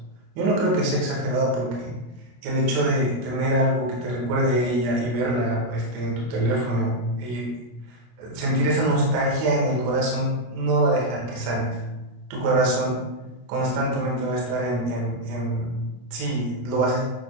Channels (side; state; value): left; late; 25 ms